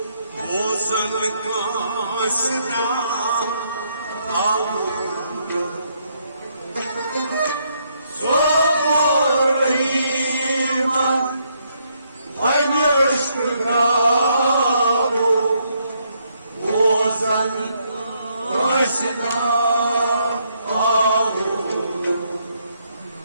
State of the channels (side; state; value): both; inverted; correlation -0.74